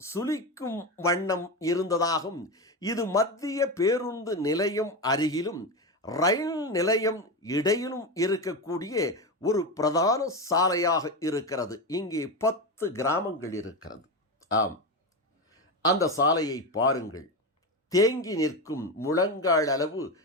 சுளிக்கும் வண்ணம் இருந்ததாகும். இது மத்திய பேருந்து நிலையம் அருகிலும் ரயில் நிலையம் இடையிலும் இருக்கக்கூடிய ஒரு பிரதான சாலையாக இருக்கிறது. இங்கே 10 கிராமங்கள் இருக்கிறது. ஆம், அந்த சாலையை பாருங்கள். தேங்கி நிற்கும் முழங்கால் அளவு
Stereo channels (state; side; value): normal; both; correlation 0.17